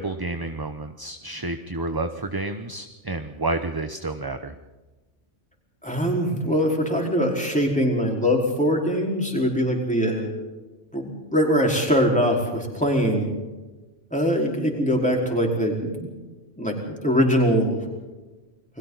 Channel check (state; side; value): normal; both; correlation 0.25